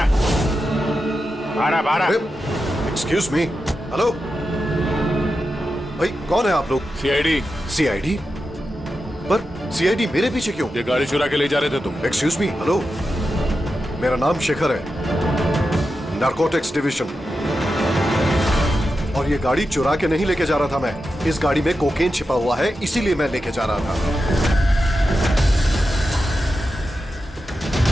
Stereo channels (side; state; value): both; normal; correlation 0.90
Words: 'Excuse me, हेलो भाई, कौन है आप लोग? सीआईडी। सीआईडी? पर सीआईडी मेरे पीछे क्यों? ये गाड़ी चुरा के ले जा रहे थे तुम। एक्सक्यूज मी, हेलो, मेरा नाम शेखर है, नारकोटिक्स डिवीजन, और ये गाड़ी चुरा के नहीं लेके जा रहा था मैं। इस गाड़ी में कोकेन छिपा हुआ है, इसीलिए मैं लेके जा रहा था।